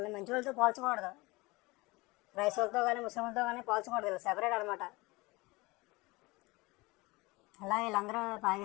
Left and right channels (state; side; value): quieter; right; 23.1 dB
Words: మంచి వాళ్ళతో పోల్చకూడదు, క్రైస్తవులతో కానీ ముస్లింలతో కానీ పోల్చకూడదు, వీళ్ళు సెపరేట్ అనమాట. అలా వీళ్ళందరూ